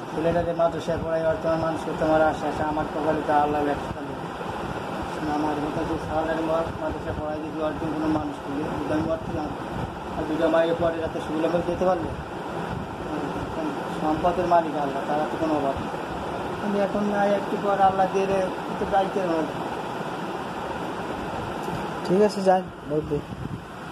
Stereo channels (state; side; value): identical; both; correlation 1.00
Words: ছেলেটাকে মাদ্রাসায় পড়াই বর্তমান মানুষ তোমার আশা আশা আমার কপালে তা আল্লাহ ব্যবসা দেবে। আমার মতো যে সালারি মাদ্রাসায় পড়াই যদি অর্জন কোনো মানুষ করবে আমি বর্তমান আর দুটো মায়ের পরে রাতে সুবিধা করে যেতে পারবে। সম্পদের মালিক আল্লাহ, তারা তো কোনো অভাব নেই। আমি এখন নাই একটু পর আল্লাহ দিয়ে একটু দায়িত্বের মধ্যে। ঠিক আছে, যান বলতে